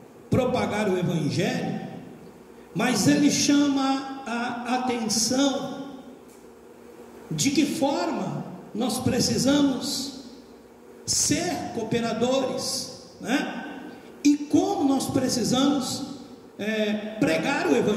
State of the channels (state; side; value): identical; both; correlation 1.00